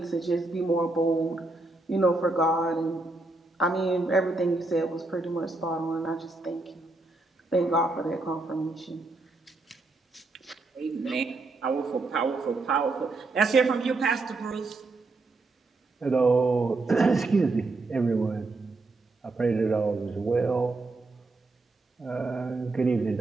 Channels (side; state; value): left; quieter; 3.2 dB